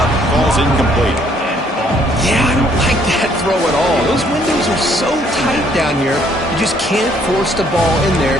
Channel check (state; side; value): normal; both; correlation 0.65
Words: falls incomplete. Yeah, I don't like that throw at all. Those windows are so tight down here, you just can't force the ball in there